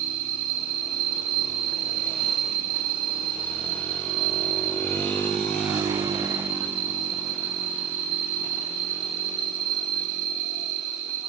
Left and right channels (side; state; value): left; quieter; 8.4 dB